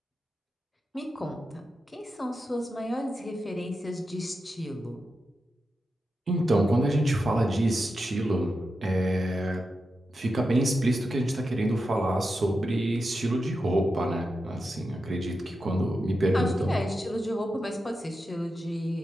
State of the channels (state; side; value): normal; both; correlation 0.89